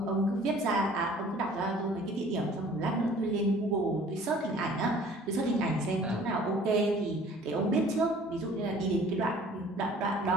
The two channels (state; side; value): normal; both; correlation 0.51